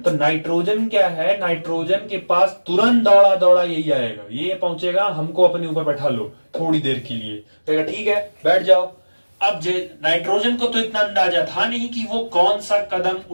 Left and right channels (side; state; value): both; inverted; correlation -1.00